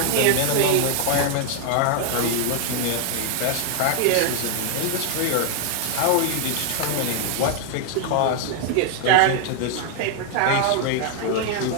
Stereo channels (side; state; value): both; different; correlation 0.00